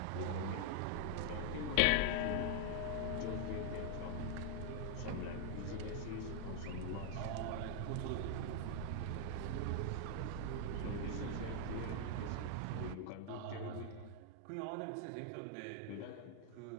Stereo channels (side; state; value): both; different; correlation 0.00